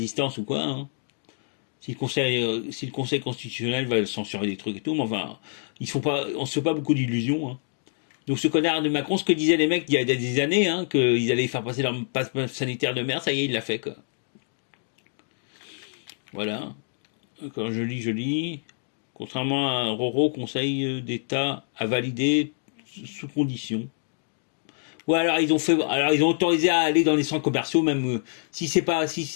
ou quoi. Hein. Si le conseil constitutionnel va censurer des trucs et tout, mais enfin, on se fait pas beaucoup d'illusions. Hein. Donc ce connard de Macron, ce que disaient les mecs il y a des années, hein, qu'ils allaient faire passer leur passe sanitaire de merde, ça y est, il l'a fait quoi. Voilà. Quand je lis. Contrairement à Roro, Conseil d'État a validé sous condition. Ouais, alors ils ont autorisé à aller dans les centres commerciaux, même si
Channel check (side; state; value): right; silent; digital silence